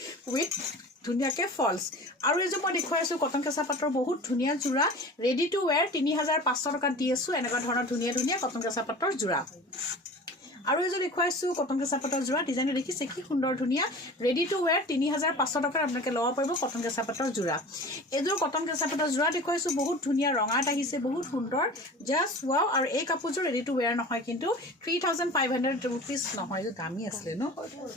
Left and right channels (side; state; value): both; normal; correlation 0.38